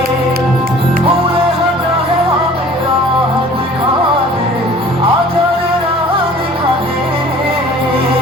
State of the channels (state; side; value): normal; both; correlation 0.49